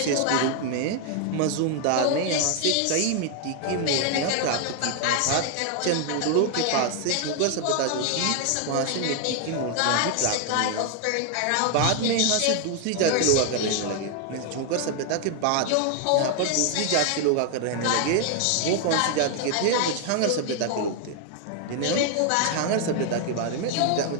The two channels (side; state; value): both; different; correlation 0.00